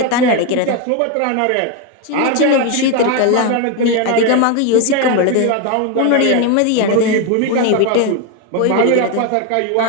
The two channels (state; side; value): different; both; correlation 0.02